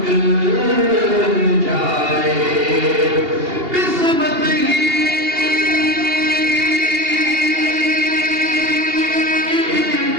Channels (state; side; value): late; left; 2.8 ms